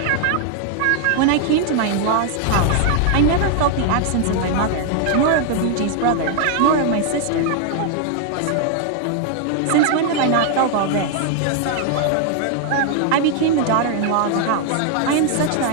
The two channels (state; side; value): different; both; correlation 0.00